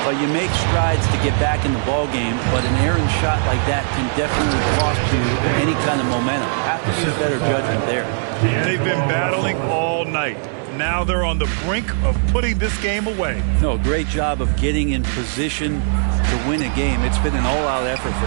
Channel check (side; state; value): left; silent; digital silence